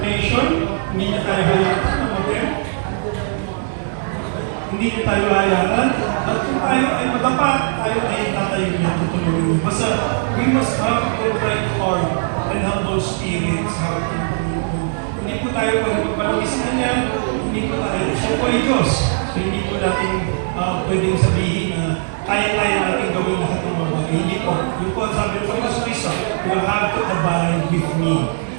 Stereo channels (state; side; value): silent; left; digital silence